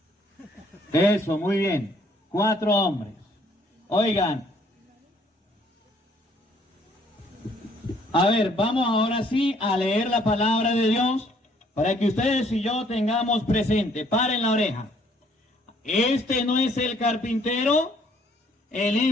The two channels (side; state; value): both; normal; correlation 0.63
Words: Eso, muy bien. 4 hombres. Oigan. A ver, vamos ahora sí a leer la palabra de Dios para que ustedes y yo tengamos presente. Paren la oreja. Este no es el carpintero, el